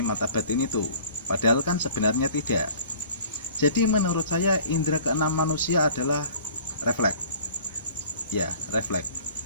mata batin itu, padahal kan sebenarnya tidak. Jadi menurut saya indera keenam manusia adalah refleks. Ya, refleks.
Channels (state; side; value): inverted; both; correlation -0.48